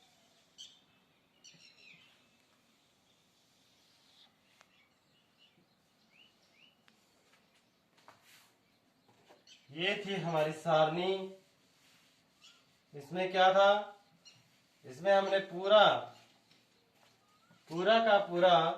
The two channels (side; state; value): both; identical; correlation 1.00